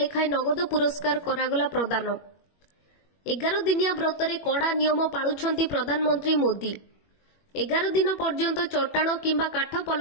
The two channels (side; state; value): right; late; 21 ms